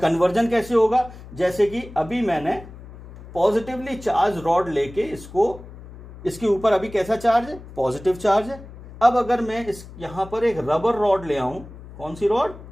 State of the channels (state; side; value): noise; left; hum, 17 dB below the sound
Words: कैसे होगा, जैसे कि अभी मैंने पॉजिटिवली चार्ज रॉड लेके इसके ऊपर अभी कैसा चार्ज है, पॉजिटिव चार्ज है। अब अगर मैं यहां पर एक रबर रॉड ले आऊं, कौन सी rod,